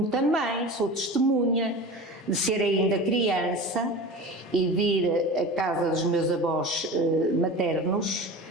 também sou testemunha de ser ainda criança e de ir à casa dos meus avós maternos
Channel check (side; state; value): both; normal; correlation 0.33